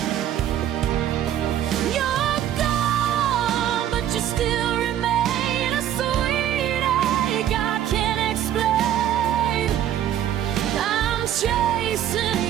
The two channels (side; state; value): left; quieter; 11.1 dB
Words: You're gone, but you still remain a sweet ache I can't explain. I'm chasing